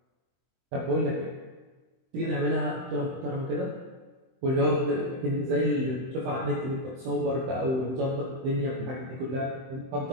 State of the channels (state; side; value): late; left; 23 ms